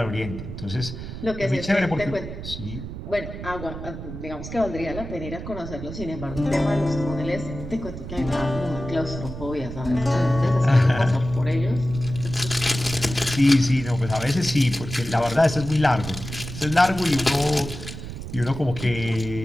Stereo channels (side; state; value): right; noise; rumble, 9 dB below the sound